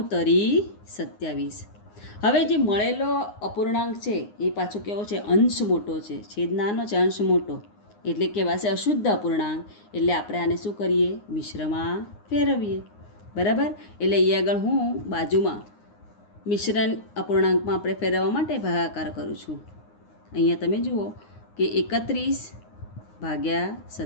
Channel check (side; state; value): right; late; 9.7 ms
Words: તરી 27. હવે જે મળેલો અપૂર્ણાંક છે એ પાછો કેવો છે? અંશ મોટો છે. છેદ નાનો છે, અંશ મોટો, એટલે કહેવાશે અશુદ્ધ અપૂર્ણાંક. એટલે આપણે આને શું કરીએ? મિશ્રમાં ફેરવીએ, બરાબર? એટલે અહીં આગળ હું બાજુમાં મિશ્રણ અપૂર્ણાંકમાં આપણે ફેરવવા માટે ભાગાકાર કરું છું. અહીંયા તમે જુઓ કે 31 ભાગ્યા